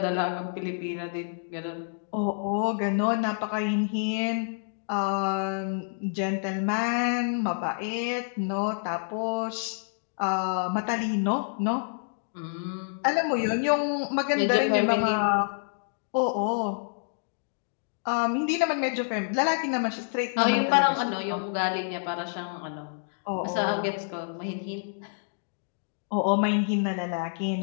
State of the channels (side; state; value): right; silent; digital silence